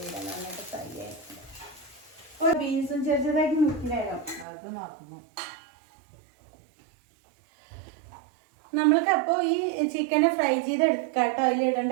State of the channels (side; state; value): left; drops out; at 4.5 s